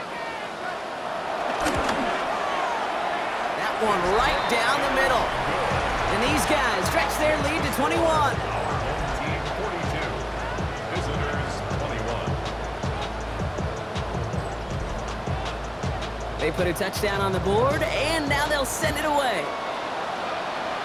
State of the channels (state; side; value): identical; both; correlation 1.00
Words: That one right down the middle. And these guys stretch their lead to 21. Team 42. Visitors 21. They put a touchdown on the board, and now they'll send it away.